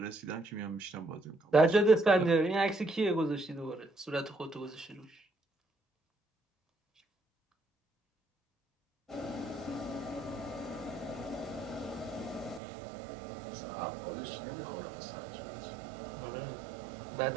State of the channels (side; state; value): left; drops out; at 12.6 s